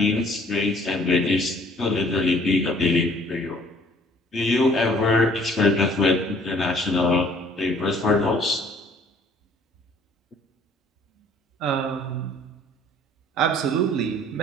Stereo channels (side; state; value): both; normal; correlation 0.56